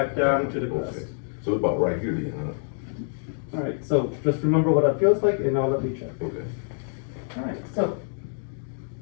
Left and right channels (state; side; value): silent; right; digital silence